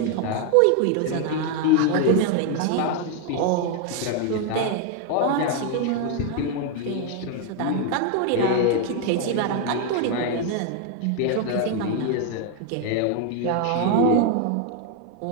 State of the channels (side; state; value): both; different; correlation 0.01